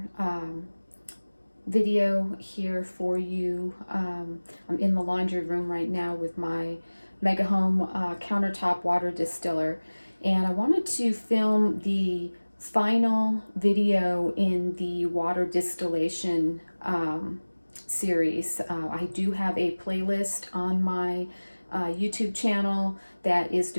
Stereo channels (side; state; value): both; inverted; correlation -1.00